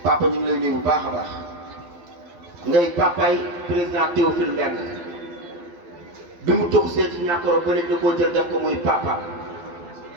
papa ñu ngi lay nuyu bu baax a baax ngay papay président Théophile Mbengue bi mu tox see ci ñàkkoro ba léegi da koo jël def ko muy papa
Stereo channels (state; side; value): late; left; 12 ms